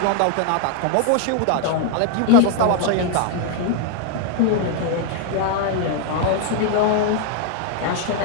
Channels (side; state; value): both; different; correlation 0.00